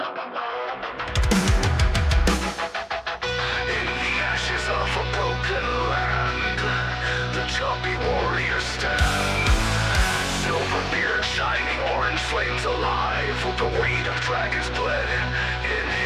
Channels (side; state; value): both; identical; correlation 1.00